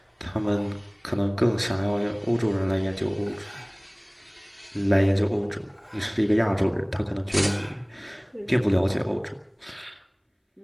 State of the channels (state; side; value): identical; both; correlation 1.00